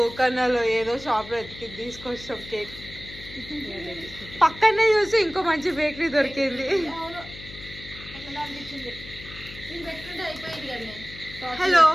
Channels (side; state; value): left; noise; hum, 15 dB below the sound